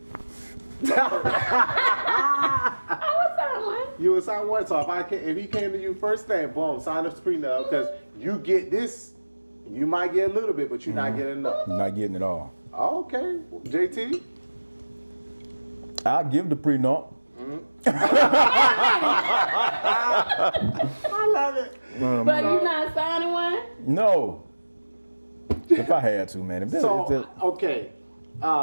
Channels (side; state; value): both; inverted; correlation -1.00